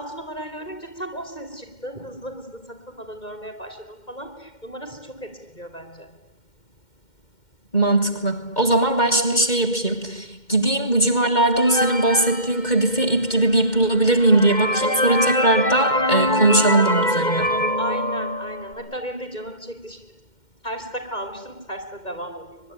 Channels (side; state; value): right; late; 2.1 ms